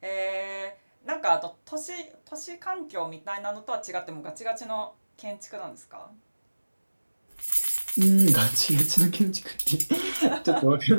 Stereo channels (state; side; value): inverted; both; correlation -1.00